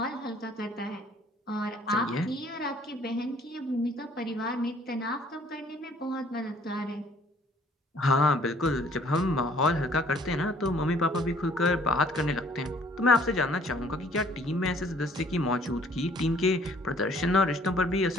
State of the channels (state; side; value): normal; both; correlation 0.58